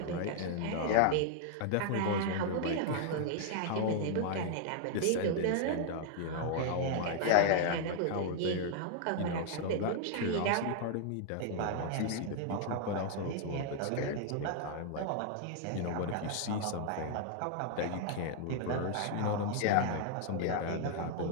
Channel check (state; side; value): different; both; correlation 0.00